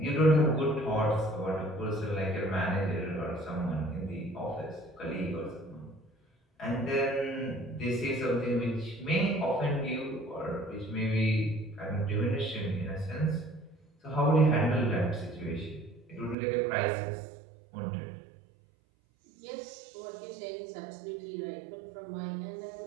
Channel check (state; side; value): drops out; left; at 16.4 s